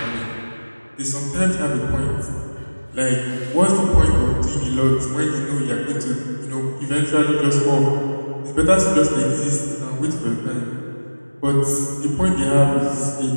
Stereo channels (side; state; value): both; inverted; correlation -1.00